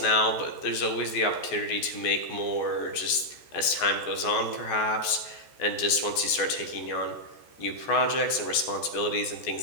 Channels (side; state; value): right; late; 14 ms